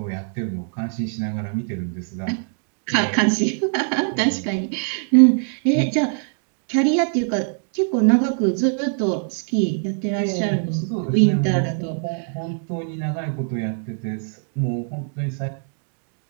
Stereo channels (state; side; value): silent; left; 60 dB below the other